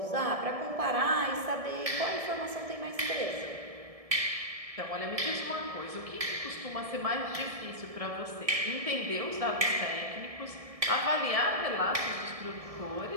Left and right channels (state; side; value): late; left; 1.7 ms